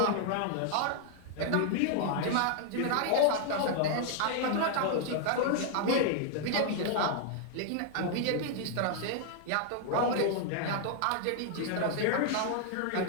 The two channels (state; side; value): different; both; correlation 0.00